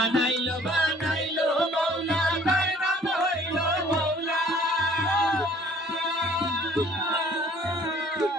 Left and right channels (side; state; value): both; normal; correlation 0.55